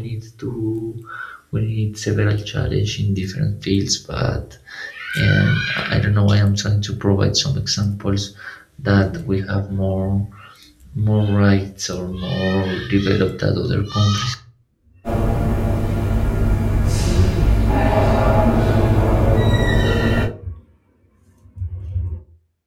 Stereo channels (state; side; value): identical; both; correlation 1.00